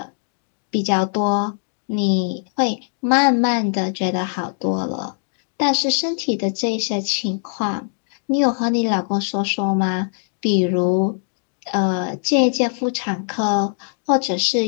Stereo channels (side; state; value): right; silent; digital silence